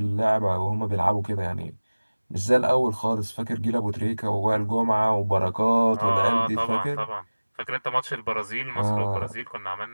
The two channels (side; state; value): both; inverted; correlation -1.00